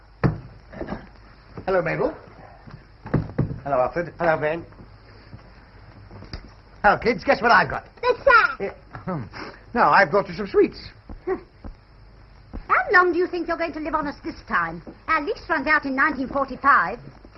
Hello, Mabel. Hello, Alfred. Hello, Ben. Hello, kids. Guess what I've got? The sack. No, I've brought you some sweets. How long do you think you're going to live on us this time? Our lease runs out in 1945.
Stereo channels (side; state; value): both; identical; correlation 1.00